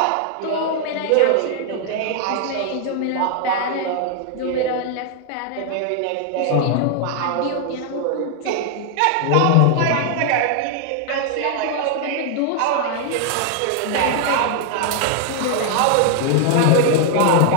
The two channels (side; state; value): both; different; correlation 0.00